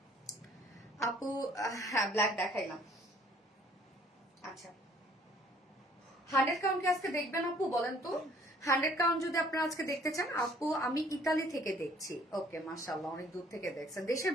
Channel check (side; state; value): both; normal; correlation 0.58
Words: আপু। হ্যাঁ ব্ল্যাক দেখাইলাম। আচ্ছা 100 কাউন্ট কি আজকে দেখবেন আপু বলেন তো? 100 কাউন্ট যদি আপনারা আজকে দেখতে চান আপু, আমি ইতালি থেকে দেখছি। ওকে মাশাআল্লাহ, অনেক দূর থেকে দেখছেন। দেশের